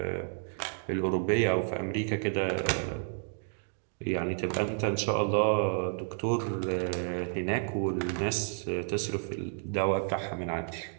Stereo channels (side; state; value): left; silent; 57 dB below the other